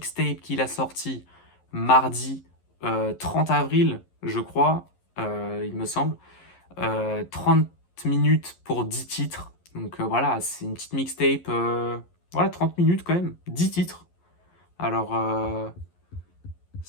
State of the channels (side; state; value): right; late; 11 ms